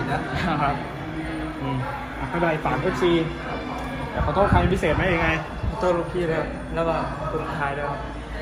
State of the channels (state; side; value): identical; both; correlation 1.00